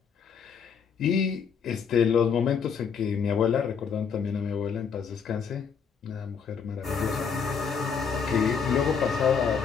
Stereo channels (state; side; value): quieter; right; 6.5 dB